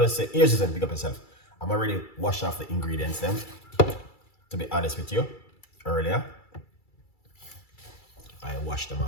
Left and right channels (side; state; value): right; late; 2.3 ms